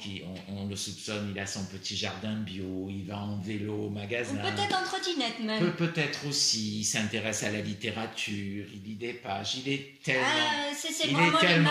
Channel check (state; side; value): identical; both; correlation 1.00